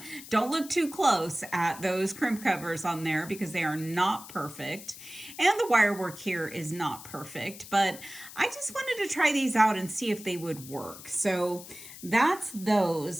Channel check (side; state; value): left; noise; hiss, 15 dB below the sound